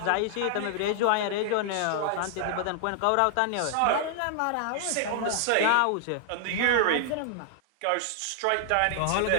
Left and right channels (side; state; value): both; different; correlation 0.00